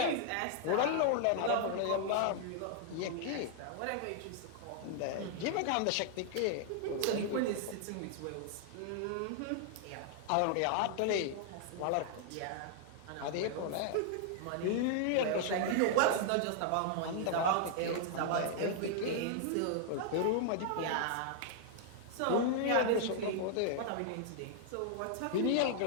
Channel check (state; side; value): different; both; correlation -0.01